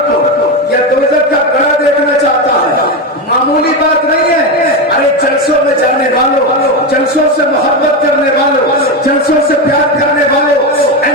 کو یا دوزخ کا گڑھا دیکھنا چاہتا ہے. معمولی بات نہیں ہے. ارے جلسوں میں جانے والوں، جلسوں سے محبت کرنے والوں، جلسوں سے پیار کرنے والوں، اے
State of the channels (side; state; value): both; normal; correlation 0.14